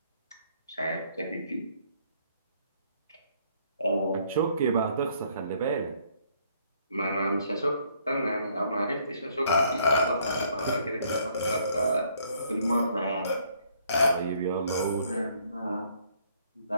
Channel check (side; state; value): both; inverted; correlation -0.65